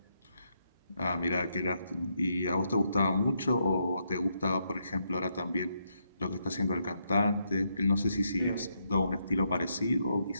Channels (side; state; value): both; inverted; correlation -0.79